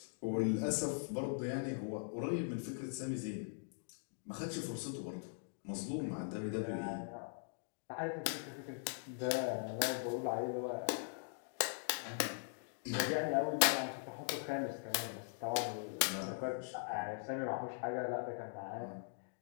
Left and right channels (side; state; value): right; silent; digital silence